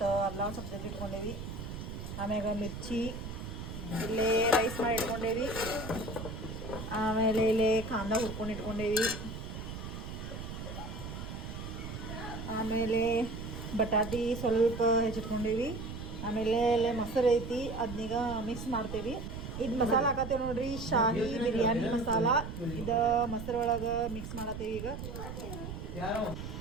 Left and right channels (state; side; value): noise; right; rumble, 8 dB below the sound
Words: ಅಲ್ಲ ಸ್ವಲ್ಪ ಜಜ್ಜಿ ಇಟ್ಕೊಂಡೇವಿ, ಆಮ್ಯಾಗ ಮಿರ್ಚಿ, ಇಲ್ಲೇ ರೈಸ್ ಮಾಡಿ ಇಟ್ಕೊಂಡೇವಿ, ಆಮೇಲೆ ಇಲ್ಲೇ ಕಾಂದ ಹುರ್ಕೊಂಡು ಇಟ್ಕೊಂಡೇವಿ, ಆಮೇಲೆ ಬಟಾಟಿ ಸ್ವಲ್ಪ ಹೆಚ್ಚಿಟ್ಕೊಂಡೇವಿ, ಆಮೇಲೆ ಇಲ್ಲೇ ಮೊಸರು ಐತಿ ಅದನ್ನೀಗ ಮಿಕ್ಸ್ ಮಾಡ್ತೇವಿ. ಇದು ಮಸಾಲ ಹಾಕತ್ತೇವೆ ನೋಡ್ರಿ, ಶಾಹಿ ಬಿರಿಯಾನಿ ಮಸಾಲ. ಇದು ಮೊಸರೊಳಗೆ ಮಿಕ್ಸ್ ಮಾಡತ್ತೇವೆ. ಈಗ